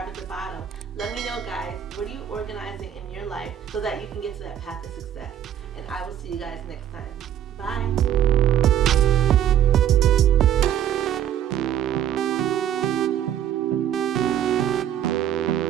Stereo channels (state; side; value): quieter; left; 10.4 dB